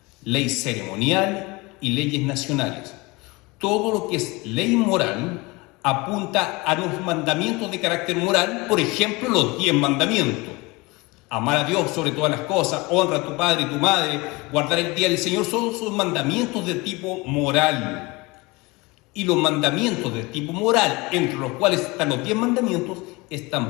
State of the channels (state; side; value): quieter; right; 24.3 dB